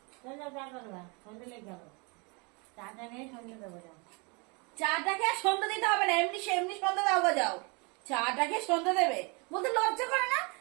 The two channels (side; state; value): left; quieter; 31.0 dB